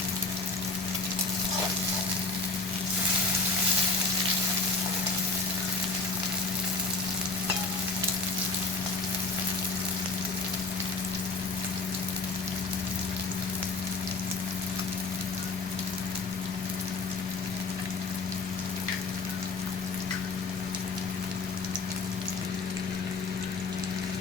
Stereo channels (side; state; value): right; quieter; 3.8 dB